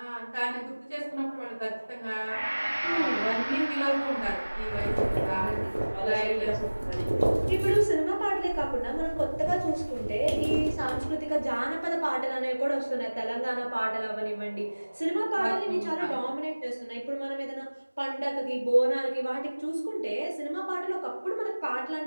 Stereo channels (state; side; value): inverted; both; correlation -1.00